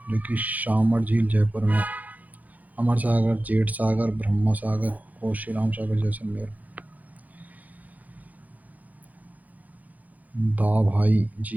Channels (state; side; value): late; left; 0.079 ms